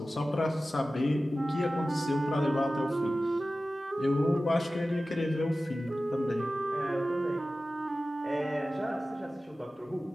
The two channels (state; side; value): normal; both; correlation 0.95